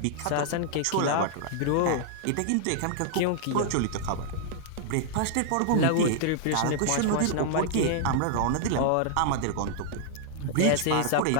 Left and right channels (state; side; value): different; both; correlation -0.01